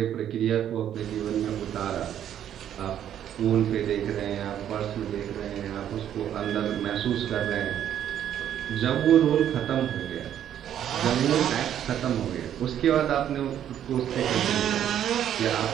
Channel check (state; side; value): quieter; left; 10.3 dB